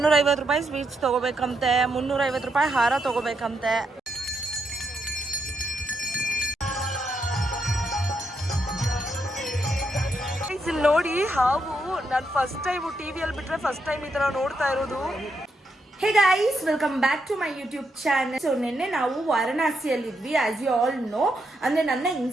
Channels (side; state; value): both; normal; correlation 0.80